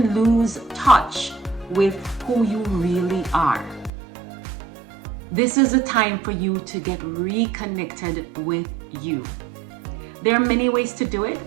lose touch with who you really are. This is a time for you to get reconnected with you. There are many ways to do it.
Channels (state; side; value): drops out; left; at 3.9 s